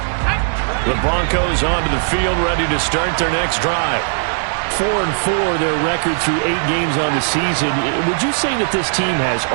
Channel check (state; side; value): silent; left; digital silence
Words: The Broncos onto the field, ready to start their next drive. 4-4, their record through 8 games on the season. Would you say that this team has